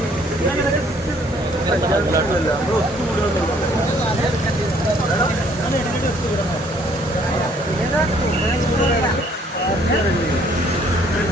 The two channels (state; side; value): normal; both; correlation 0.62